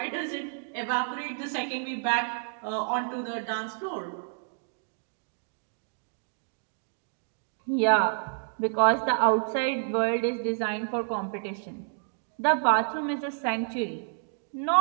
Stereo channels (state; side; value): silent; left; digital silence